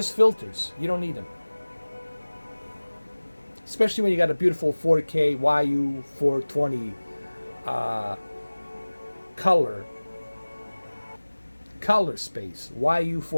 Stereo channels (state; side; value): inverted; both; correlation -1.00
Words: filters. You don't need them. Especially when you got a beautiful 4K YU420 color space.